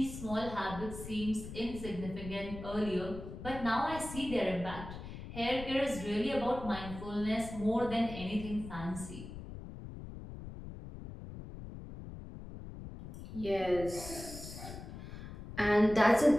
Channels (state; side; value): noise; left; rumble, 11 dB below the sound